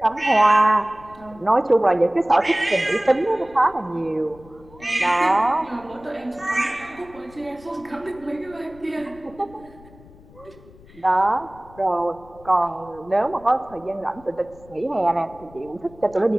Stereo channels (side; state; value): left; noise; rumble, 23 dB below the sound